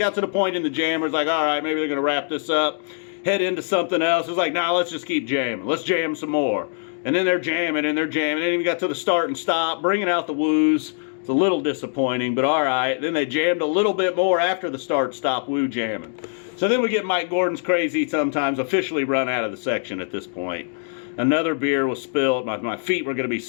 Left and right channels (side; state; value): right; silent; digital silence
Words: to the point in the jammers, like, all right, maybe they're going to wrap this up, head into something else. It's like, nah, let's just keep jamming. Let's jam some more. And then they're jamming, and they're jamming. Then we got to the start and stop, bringing out the woos. It's a little disappointing, but all right. Then they jammed a little bit more after the start-stop woo jamming. So then we get Mike Gordon's Crazy Sometimes officially run out of the section at this point. Another beer was spilled. My feet were going to be